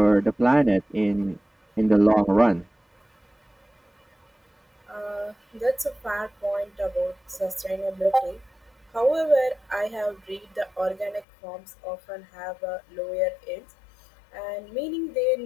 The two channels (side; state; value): right; drops out; at 11.2 s